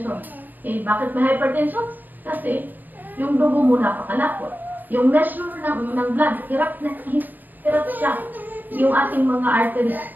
bakit may hypertension? Kasi, yung dugo mo napakalapot. Yung measure ng blood, hirap siya. Yung ating mga arteries.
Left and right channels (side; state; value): left; late; 0.086 ms